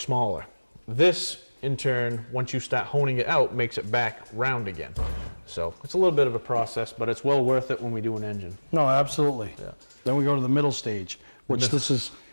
This, in turn, once you start honing it out, makes it back round again. So it's a little bit of a process, but it's well worth it when we do an engine. No, absolutely. Yeah. Then we go to the middle stage, which this is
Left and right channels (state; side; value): inverted; both; correlation -1.00